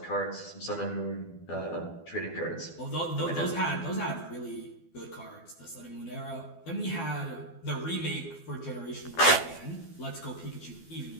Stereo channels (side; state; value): right; late; 12 ms